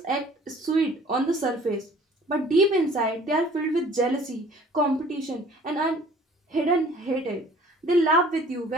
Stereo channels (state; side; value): normal; both; correlation 0.52